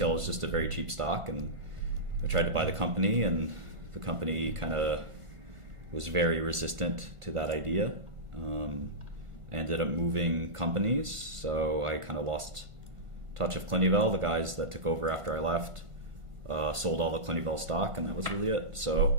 It's just a very cheap stock, and I tried to buy the company, and the company kind of was very resistant to that idea. I ended up moving companies, so I kind of lost touch of Clinuvel. The guys that took over after I left sold all the Clinuvel stock, and that was really it.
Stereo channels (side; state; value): left; late; 1.5 ms